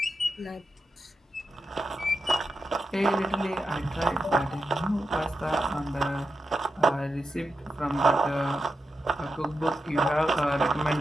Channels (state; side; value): normal; both; correlation 0.88